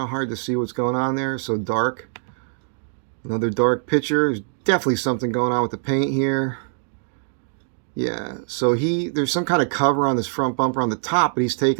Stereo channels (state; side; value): silent; left; digital silence